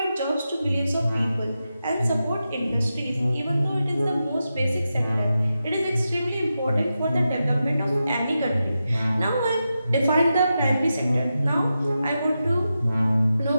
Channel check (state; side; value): inverted; both; correlation -0.90